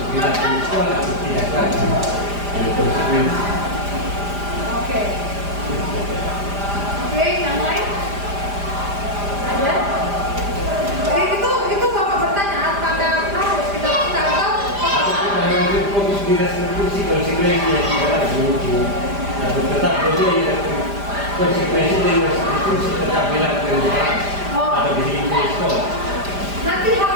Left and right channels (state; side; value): late; left; 5.0 ms